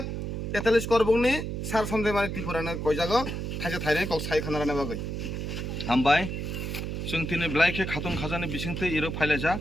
43 করবকনি স্যার সঞ্জয় মানিক ত্রিপুরাनो কইজাगो थाइसे थाइनै কক साइ खानारानो बागै हामबाय जों दिनै ब्लाइखे खाथं खाजानि बिसिंथै इरो फाइलायजा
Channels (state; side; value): noise; right; hum, 4 dB below the sound